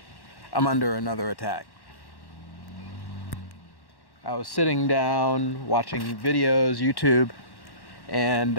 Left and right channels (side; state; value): right; late; 1.1 ms